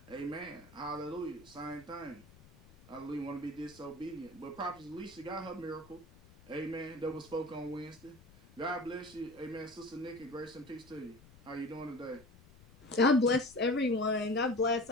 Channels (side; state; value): left; noise; rumble, 23 dB below the sound